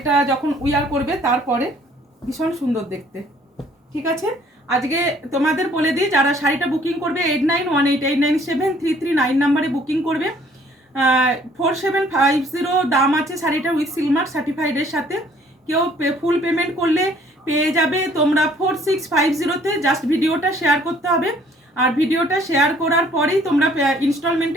যখন উইয়ার করবে তারপরে ভীষণ সুন্দর দেখতে। ঠিক আছে, আজকে তোমাদের বলে দিই যারা শাড়িটা বুকিং করবে 8918897339 নাম্বারে বুকিং করবে। 4750 দাম আছে শাড়িটা উইথ সিলমার্ক সার্টিফাইডের সাথে। কেউ ফুল পেমেন্ট করলে পেয়ে যাবে তোমরা 4650-তে। জাস্ট ভিডিওটা শেয়ার করতে হবে, আর ভিডিওটা শেয়ার করার পরেই তোমরা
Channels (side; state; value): both; normal; correlation 0.59